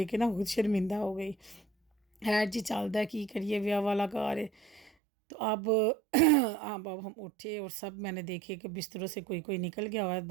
کے نا خود شرمندہ ہو گئی۔ خیر جی چلتا ہے، کی کریے، ویاہ والا گھر ہے۔ تو اب ہم اٹھے اور سب میں نے دیکھے کہ بستروں سے کوئی نکل گیا ہوا ہے،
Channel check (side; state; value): left; drops out; at 4.9 s